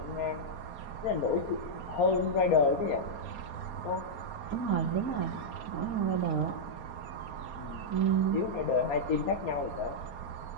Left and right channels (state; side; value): late; right; 4.2 ms